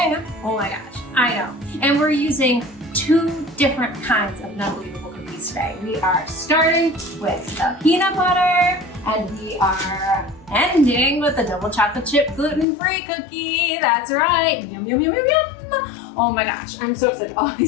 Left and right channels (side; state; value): right; drops out; at 12.7 s